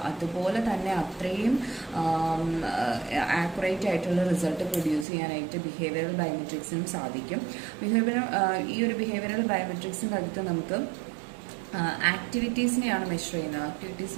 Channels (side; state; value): left; drops out; at 5.1 s